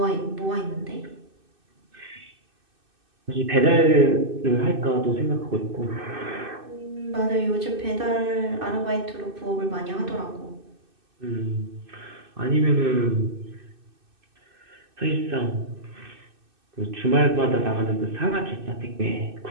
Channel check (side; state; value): left; late; 2.6 ms